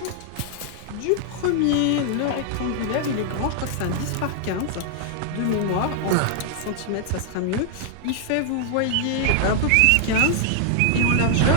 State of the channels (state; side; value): different; both; correlation 0.00